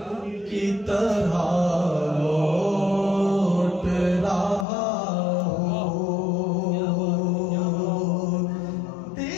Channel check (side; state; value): right; drops out; at 4.7 s